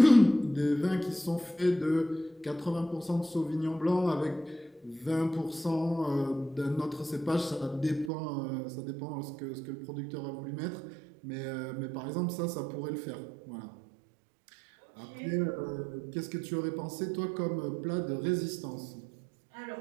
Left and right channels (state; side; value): drops out; left; at 8.1 s